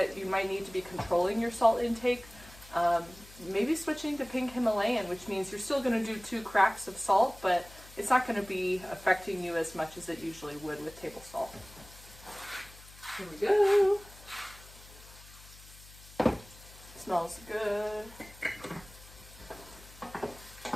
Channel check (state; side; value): noise; left; hum, 20 dB below the sound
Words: you might need to be controlling your salt intake, maybe switching to pink Himalayan, which means you're still going to do 2 cracks of salt, but it's not going to be affecting you as much as it usually would with table salt. Here we go. Smells good.